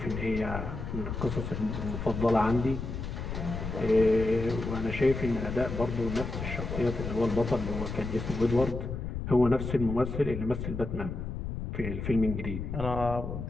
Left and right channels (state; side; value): noise; left; rumble, 5 dB below the sound